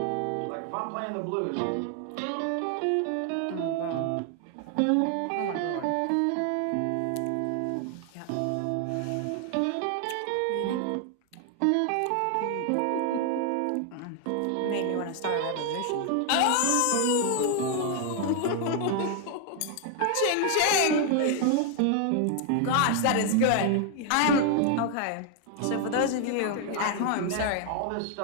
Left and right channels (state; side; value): different; both; correlation 0.00